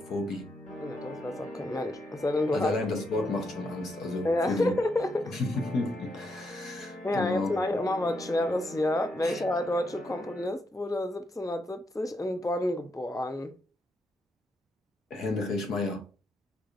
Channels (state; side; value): normal; both; correlation 0.80